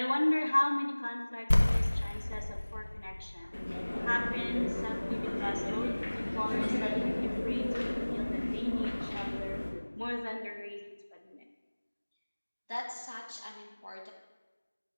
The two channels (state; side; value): inverted; both; correlation -1.00